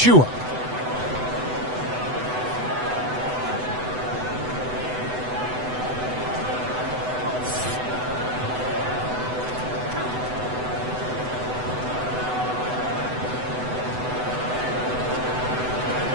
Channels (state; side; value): late; left; 8.0 ms